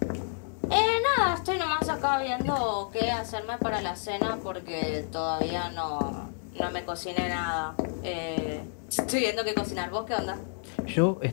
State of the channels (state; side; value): silent; right; 58 dB below the other